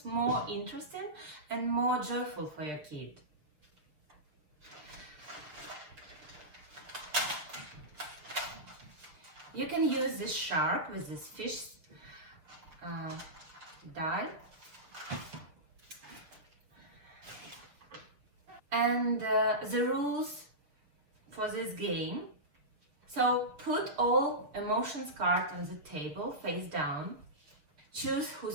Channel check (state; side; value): late; left; 6.8 ms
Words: more interesting and more joyful for your kid. You can use this shark with this fish die. And the rules for this game. So put all emotions cards on the table face down. Choose who